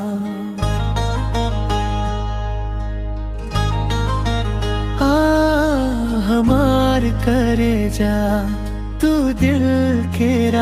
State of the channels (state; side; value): identical; both; correlation 1.00